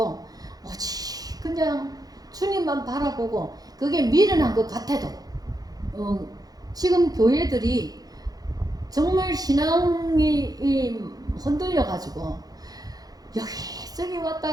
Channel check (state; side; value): late; left; 0.18 ms